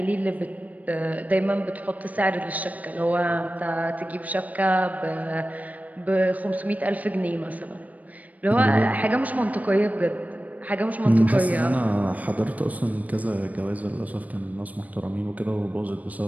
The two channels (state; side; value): late; left; 0.073 ms